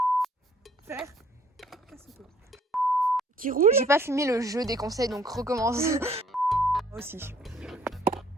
Faire. Qui roule. J'ai pas filmé le jeu des conseils, donc recommence. Moi aussi.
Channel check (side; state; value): both; normal; correlation 0.60